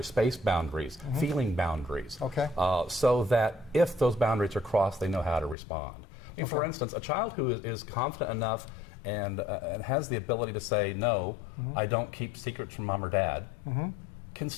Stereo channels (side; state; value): right; drops out; at 5.6 s